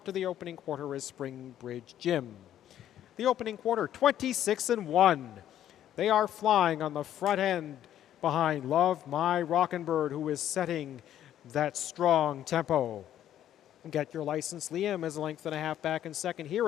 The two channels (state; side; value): quieter; right; 11.2 dB